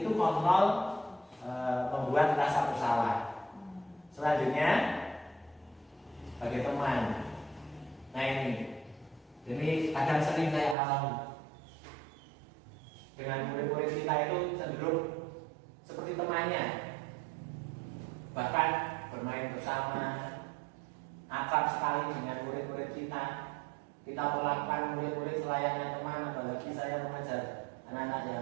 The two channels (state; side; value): drops out; left; at 10.8 s